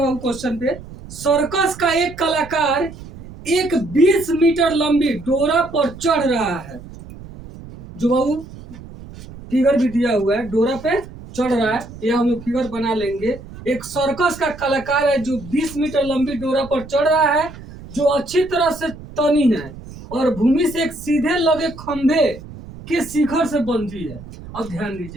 क्वेश्चन पे, सर्कस का एक कलाकार एक 20 मीटर लंबी डोरा पर चढ़ रहा है। जो बाबू फिगर भी दिया हुआ है, डोरा पे चढ़ रहा है, यह हम लोग फिगर बना लेंगे। एक सर्कस का कलाकार है जो 20 मीटर लंबी डोरा पर चढ़ रहा है, जो अच्छी तरह से तनी है और भूमि से एक सीधे लगे खंभे के शिखर से बंधी है। अब ध्यान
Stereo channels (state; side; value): noise; right; rumble, 16 dB below the sound